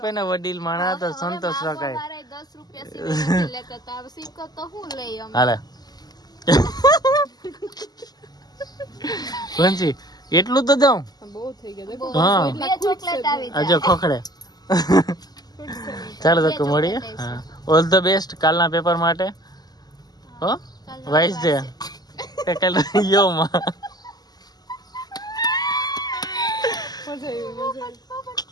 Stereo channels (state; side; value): late; right; 0.20 ms